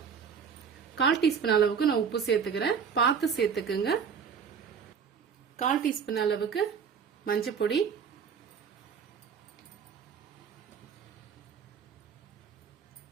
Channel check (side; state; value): left; quieter; 6.8 dB